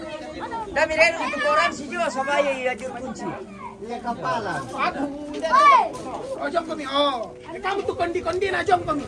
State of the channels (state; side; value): identical; both; correlation 1.00